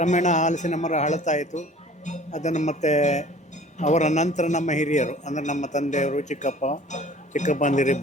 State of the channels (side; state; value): both; normal; correlation 0.48